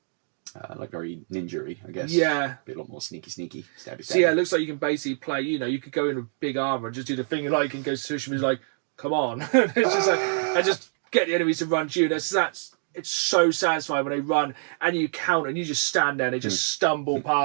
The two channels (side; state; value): left; silent; digital silence